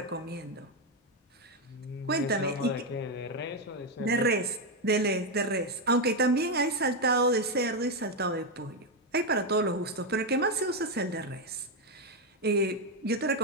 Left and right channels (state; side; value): normal; both; correlation 0.06